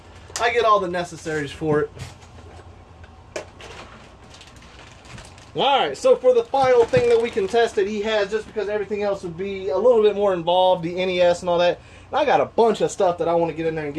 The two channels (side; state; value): both; identical; correlation 1.00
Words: I get all the necessaries for it. Alright, so for the final thing that we can test that he has, just because everything else would be a little bit more involved, the NES and all that, and I got a bunch of stuff that I want to get in there and